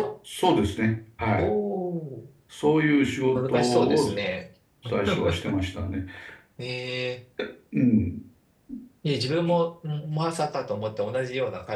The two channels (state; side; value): identical; both; correlation 1.00